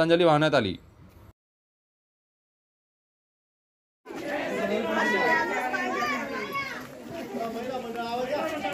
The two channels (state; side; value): identical; both; correlation 1.00